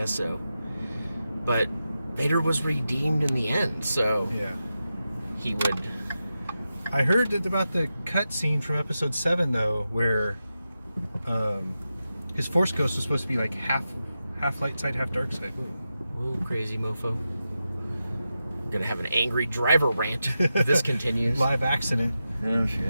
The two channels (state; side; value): inverted; both; correlation -0.90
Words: so. But Vader was redeemed in the end, so yeah, he would. I heard that about the cutscene from Episode 7 though, where his Force Ghost was supposed to be like half light side, half dark side. Whoa, crazy mofo. I'm gonna have an angry driver rant if this continues. Live accident. Oh